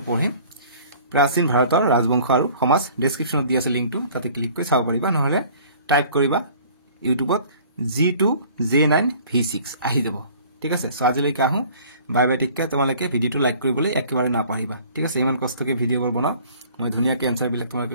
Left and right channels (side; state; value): both; inverted; correlation -0.51